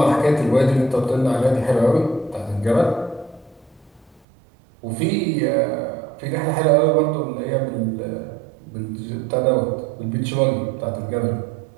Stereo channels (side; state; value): left; drops out; at 4.2 s